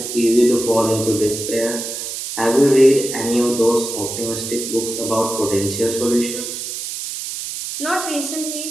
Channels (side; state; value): right; noise; hiss, 6 dB below the sound